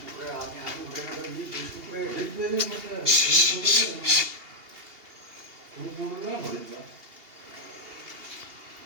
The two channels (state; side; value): late; left; 2.8 ms